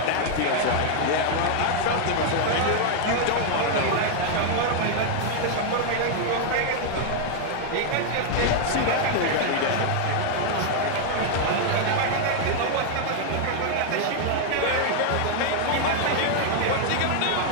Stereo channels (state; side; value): different; both; correlation 0.00